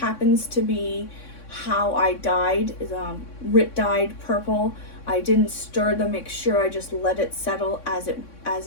to be how I dyed, is Rit dyed purple. I didn't stir the mixture, I just let it settle as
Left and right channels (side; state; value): right; late; 3.6 ms